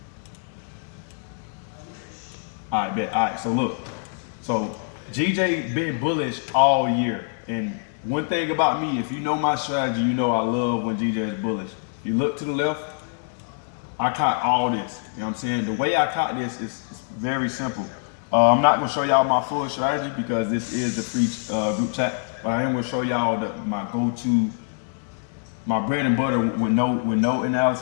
All right, bet. All right, so look. So GJ been bullish all year. And one thing about me, if you know my strategy, you know I love when GJ is bullish. If you look to the left, I caught all this. You know what I'm saying? The way I caught this is very simple. I'm not gonna show y'all my full strategy because this is the free group chat, but I am gonna show y'all my go-to, my bread and butter with no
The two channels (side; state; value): right; silent; digital silence